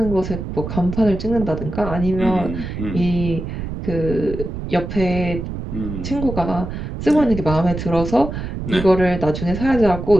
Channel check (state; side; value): noise; right; rumble, 6 dB below the sound